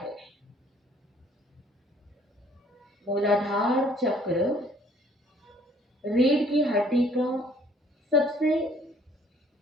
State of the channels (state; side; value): normal; both; correlation 0.59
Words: मूलाधार चक्र रीढ़ की हड्डी का सबसे